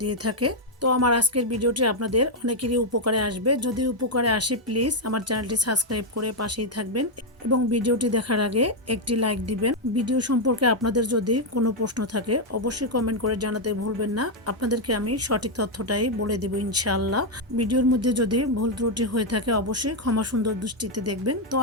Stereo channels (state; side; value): normal; both; correlation 0.00